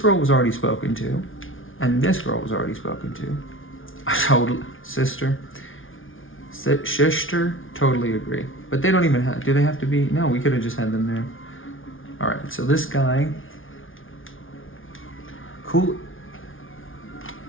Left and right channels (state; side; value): late; right; 0.58 ms